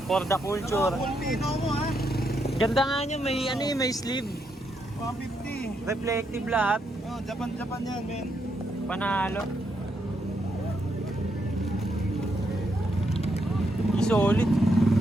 For the culture. Pulpino mo ha. Ganda nga nyo, may ano eh, may sleeve. 150. Reflective lahat. Oh, Japan yan, men. Panalo. Solid.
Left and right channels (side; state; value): both; normal; correlation 0.79